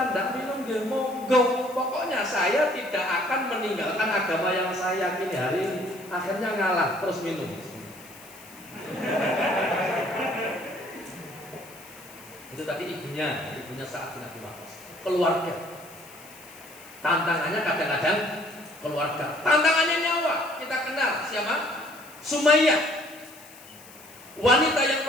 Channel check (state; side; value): noise; left; hiss, 20 dB below the sound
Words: tidak minum, ya monggo. Pokoknya saya tidak akan meninggalkan agama yang saya yakini hari ini." Akhirnya ngalah, terus minum. Itu tadi ibunya Sa'ad bin Abi Waqqas. Keluarga. Tantangannya kadang-kadang keluarga. Tantangannya nyawa. Kita kenal siapa? Sumayyah. Wanita yang